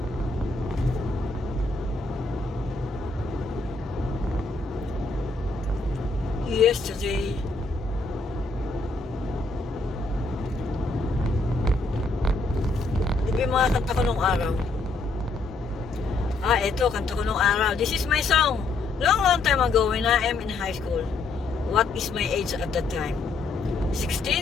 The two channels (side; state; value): right; quieter; 3.5 dB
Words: Yesterday, yung mga kanta ko nung araw. Ito, kanta ko nung araw. This is my song. Long time ago when I am in high school. What is my age at that time?